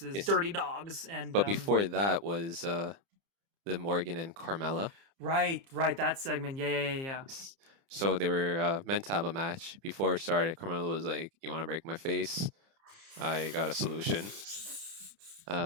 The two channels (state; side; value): late; left; 30 ms